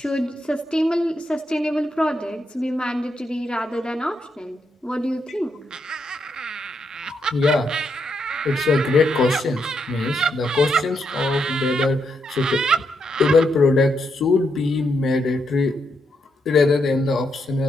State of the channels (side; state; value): both; normal; correlation 0.80